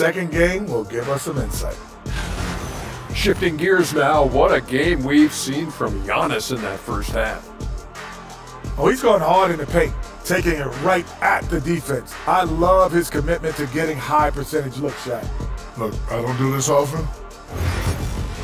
game will give us some insight. Shifting gears now, what a game we've seen from Giannis in that first half. Oh, he's going hard in the paint, taking it right at the defense. I love his commitment to getting high percentage looks, Shaq. Look, I don't do this often.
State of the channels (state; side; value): identical; both; correlation 1.00